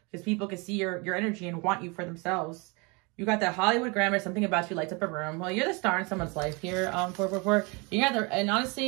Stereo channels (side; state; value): left; quieter; 29.3 dB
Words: because people can see your energy and want you for themselves. You got that Hollywood grammar, something about you lights up a room. Well, you're the star in someone's life here, 444. And